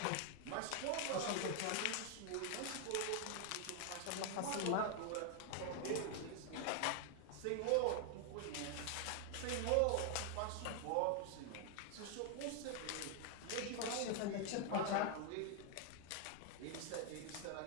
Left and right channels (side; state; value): both; different; correlation 0.00